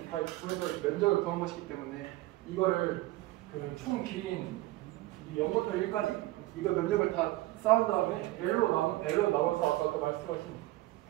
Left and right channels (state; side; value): quieter; left; 18.2 dB